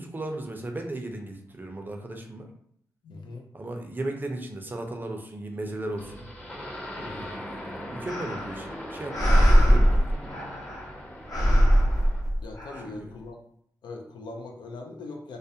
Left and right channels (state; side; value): normal; both; correlation 0.96